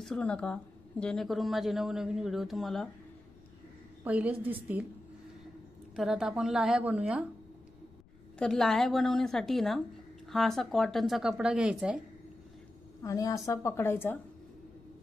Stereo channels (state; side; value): noise; left; rumble, 26 dB below the sound